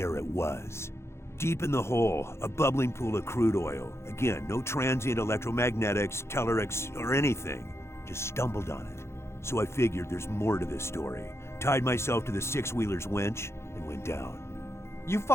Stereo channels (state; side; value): late; right; 0.13 ms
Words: it was. Deep in the hole, a bubbling pool of crude oil. Again, no transient electromagnetics, tellurics, or anything. Just stumbled on it. So I figured there's more to this story. Tied myself to the six-wheeler's winch and went down. You